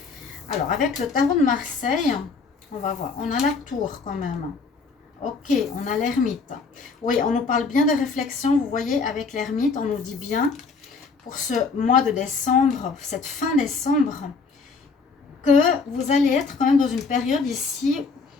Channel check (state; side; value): quieter; right; 4.6 dB